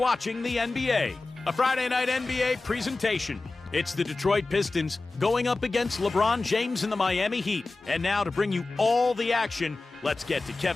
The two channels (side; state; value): right; quieter; 3.4 dB